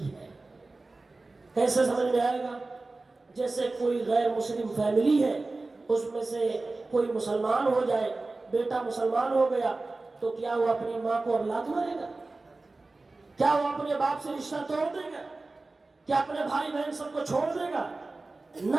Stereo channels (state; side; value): quieter; left; 3.4 dB